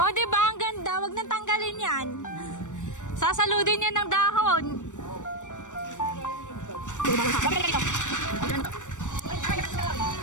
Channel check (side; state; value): right; late; 0.85 ms